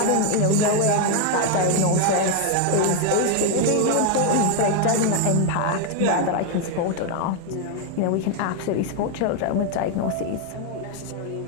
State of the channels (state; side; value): different; both; correlation 0.00